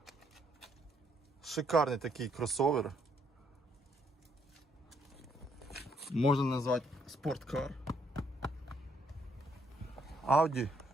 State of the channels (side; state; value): both; normal; correlation 0.71